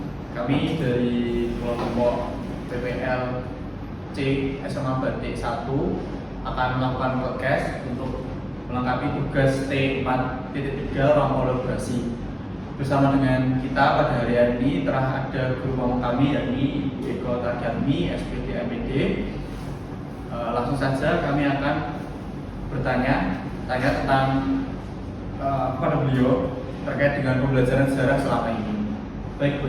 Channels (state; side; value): identical; both; correlation 1.00